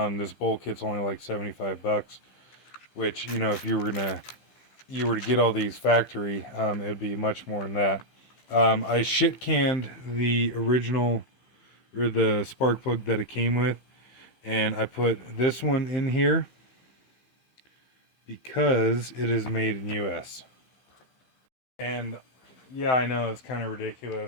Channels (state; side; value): late; right; 15 ms